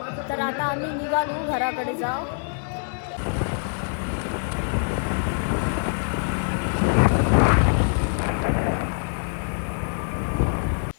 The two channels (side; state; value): right; silent; 62 dB below the other